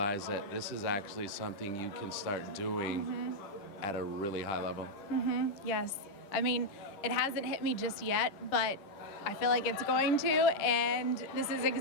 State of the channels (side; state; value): right; late; 10 ms